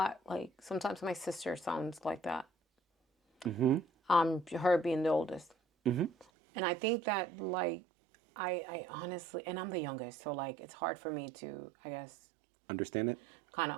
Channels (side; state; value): left; drops out; at 6.2 s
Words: like sometimes my sister sounds like that. Her being the oldest, and I think that like I honestly, and I'm the youngest, so like it's hard for me to, I guess, Understand it? kind